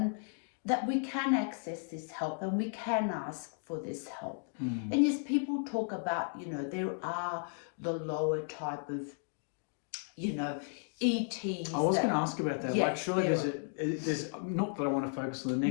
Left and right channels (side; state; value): right; silent; 55 dB below the other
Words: that we can access this help and we can ask for this help. And yes, people talk about, you know, there are the lower type of, you know, ETs. I was going to ask about that. Yes, like, surely there's not that I want to focus on the